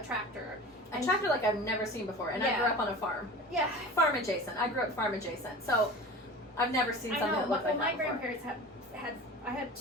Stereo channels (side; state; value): both; normal; correlation 0.36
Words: tractor. A tractor like I've never seen before, and I grew up on a farm. Yeah. Farm adjacent. I grew up farm adjacent, so I've never seen something that looked like that my before. grandparents I had